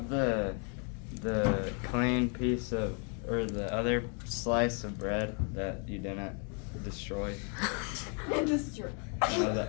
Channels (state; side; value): quieter; right; 39.1 dB